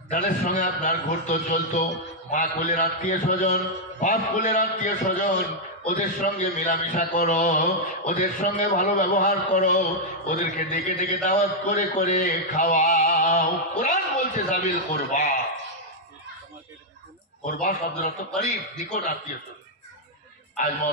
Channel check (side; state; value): both; normal; correlation -0.04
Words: যাদের সঙ্গে আপনার ঘুরতো চলতো, মা কুলের আত্মীয় স্বজন, বাপ কুলের আত্মীয় স্বজন, ওদের সঙ্গে মেলামেশা করো, ওদের সঙ্গে ভালো ব্যবহার করো, ওদেরকে ডেকে ডেকে দাওয়াত করে করে খাওয়াও। কোরআন বলছে সাবিল করবা, করবা শব্দের অর্থ করিব, নিকট আত্মীয় স্বজন। আজ